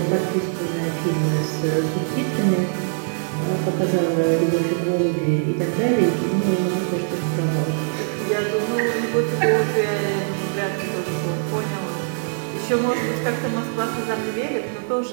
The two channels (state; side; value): silent; left; digital silence